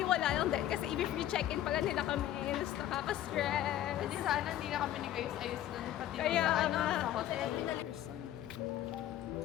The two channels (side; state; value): right; quieter; 12.6 dB